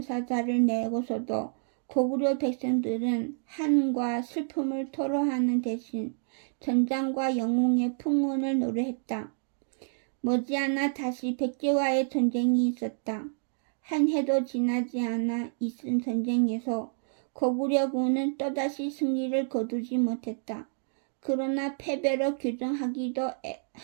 내고서도 고구려 백성들은 한과 슬픔을 토로하는 대신 전장과 영웅의 풍운을 노래했다. 머지않아 다시 백제와의 전쟁이 있었다. 한 해도 지나지 않아 있은 전쟁에서 고구려군은 또다시 승리를 거두지 못했다. 그러나 패배로 규정하기에도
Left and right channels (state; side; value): silent; left; digital silence